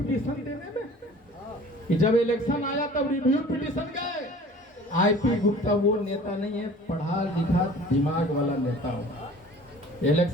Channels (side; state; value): both; normal; correlation 0.46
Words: देने में, कि जब इलेक्शन आया तब रिव्यू पिटीशन गए। आईपी गुप्ता वो नेता नहीं है, पढ़ा लिखा दिमाग वाला नेता हो।